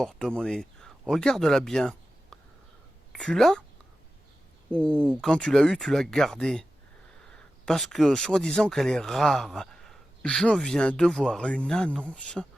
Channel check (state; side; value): normal; both; correlation 0.93